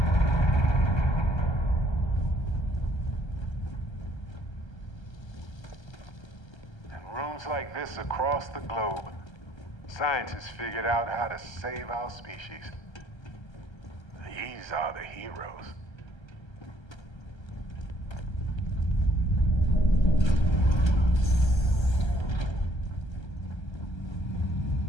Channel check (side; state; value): right; late; 1.3 ms